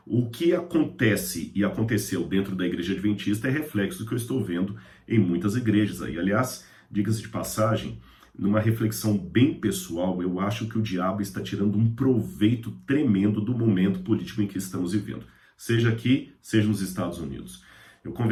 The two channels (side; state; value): both; identical; correlation 1.00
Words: o que acontece e aconteceu dentro da igreja adventista é reflexo do que eu estou vendo em muitas igrejas aí. Aliás, diga-se de passagem, numa reflexão bem pessoal, eu acho que o diabo está tirando um proveito tremendo do momento político em que estamos vivendo, seja aqui, seja nos Estados Unidos. Eu